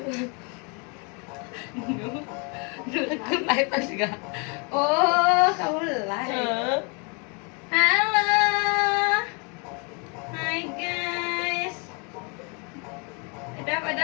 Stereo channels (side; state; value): right; quieter; 33.7 dB